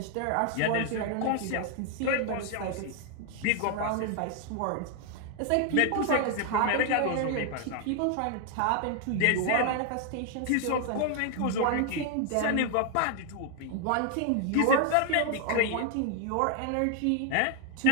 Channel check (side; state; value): both; different; correlation 0.01